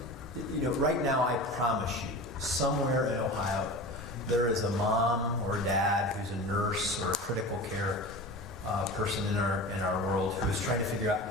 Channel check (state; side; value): normal; both; correlation 0.32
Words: right now I promise you, somewhere in Ohio, there is a mom or a dad who's a nurse or a critical care person in our world who is trying to figure